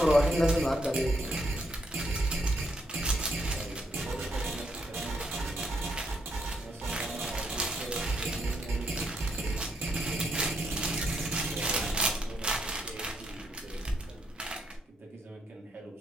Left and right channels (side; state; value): both; normal; correlation 0.75